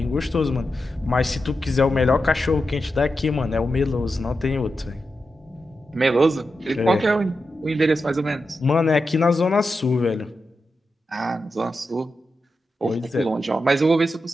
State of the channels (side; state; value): both; normal; correlation 0.89